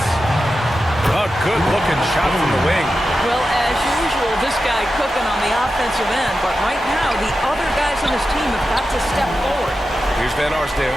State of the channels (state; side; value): normal; both; correlation 0.91